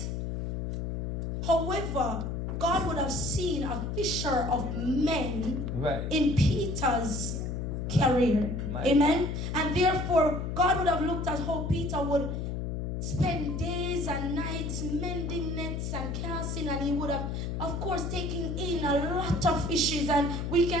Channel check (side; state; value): left; noise; hum, 3 dB below the sound